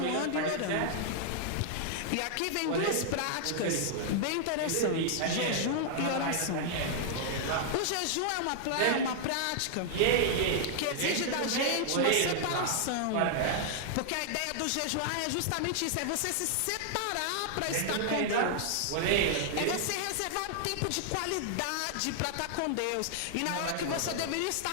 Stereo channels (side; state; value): both; different; correlation 0.00